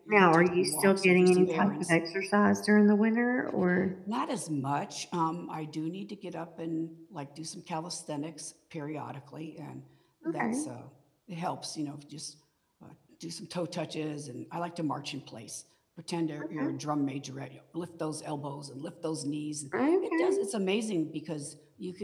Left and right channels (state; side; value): identical; both; correlation 1.00